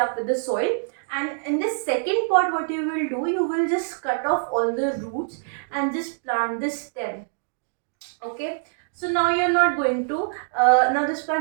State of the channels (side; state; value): left; silent; digital silence